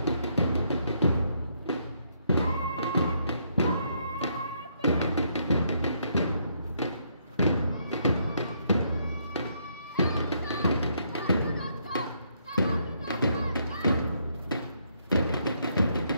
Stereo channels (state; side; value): inverted; both; correlation -0.73